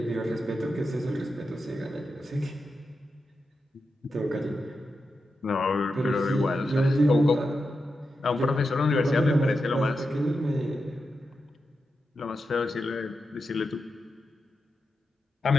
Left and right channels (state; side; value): normal; both; correlation 0.88